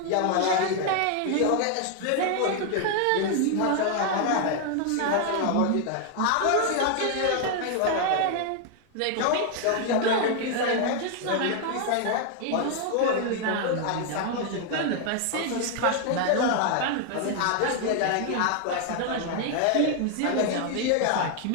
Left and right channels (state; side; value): different; both; correlation 0.00